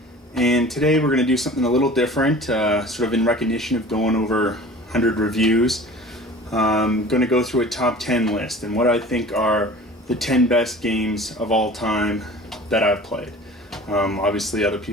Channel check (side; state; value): both; normal; correlation 0.42